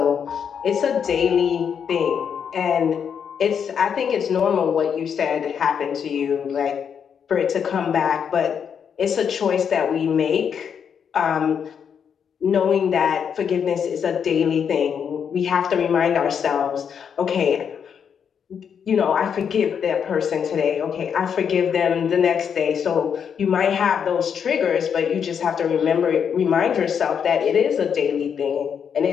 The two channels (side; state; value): right; quieter; 7.4 dB